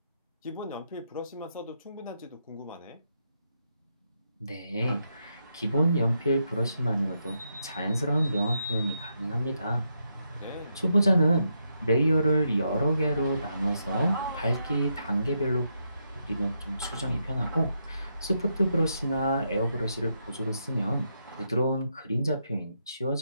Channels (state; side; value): inverted; both; correlation -0.81